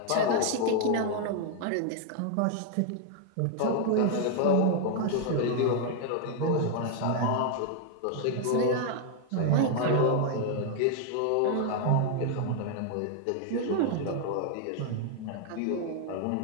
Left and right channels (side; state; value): both; different; correlation 0.00